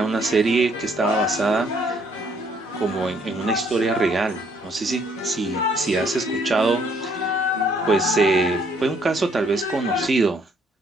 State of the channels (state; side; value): normal; both; correlation 0.66